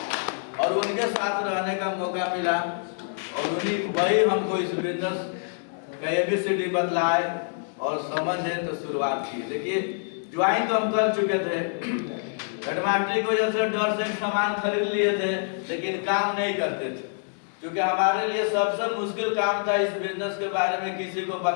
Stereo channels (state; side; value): silent; right; digital silence